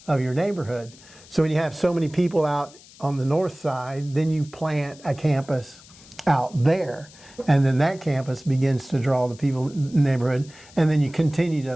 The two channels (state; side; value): noise; left; hiss, 23 dB below the sound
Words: of your neighborhood. So when you have so many people out on the north side, then you plant a campus out there, and then that campus begins to draw the people in the neighborhood, and then you continue